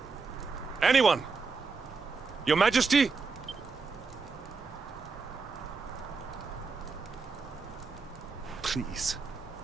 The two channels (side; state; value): left; quieter; 4.6 dB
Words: Anyone! Your Majesty? Please.